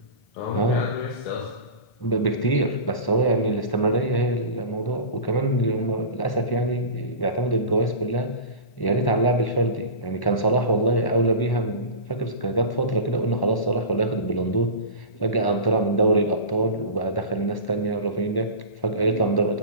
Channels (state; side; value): late; right; 1.1 ms